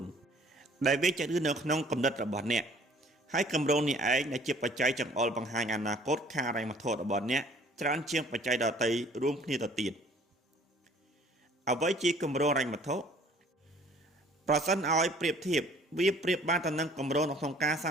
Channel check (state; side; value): normal; both; correlation 0.54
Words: នដែលវាចាក់ឬនៅក្នុងគំនិតរបស់អ្នកហើយគម្រោងនេះឯងដែលជាបច្ច័យចង្អុលបង្ហាញអនាគតខាងហិរញ្ញវត្ថុរបស់អ្នកច្រើនជាងបច្ច័យដទៃរួមគ្នាទៅទៀតអ្វីជាគម្រោងហិរញ្ញវត្ថុប្រសិនឲ្យប្រៀបធៀបវាប្រៀបបានទៅនឹងគម្រោងក្នុងការសា